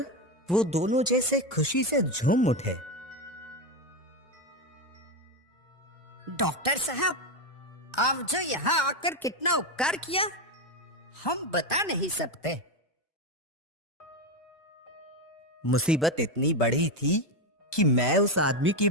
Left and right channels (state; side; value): normal; both; correlation 0.11